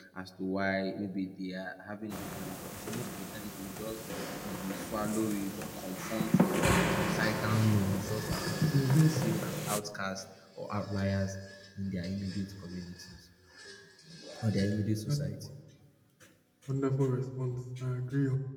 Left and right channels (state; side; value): identical; both; correlation 1.00